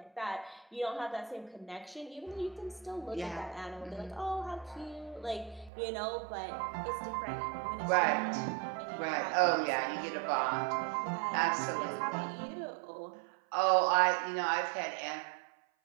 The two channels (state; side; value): drops out; left; at 5.7 s